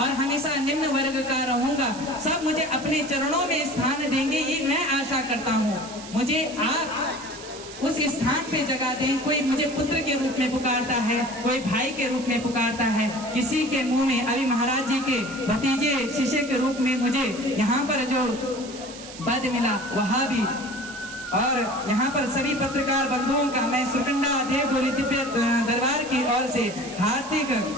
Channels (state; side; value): noise; right; hiss, 15 dB below the sound